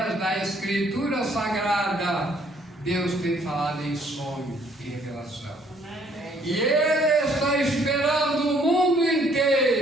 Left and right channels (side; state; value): both; normal; correlation 0.63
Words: da Escritura Sagrada. Deus tem falado em sonho e revelação. E Ele está esperando o mundo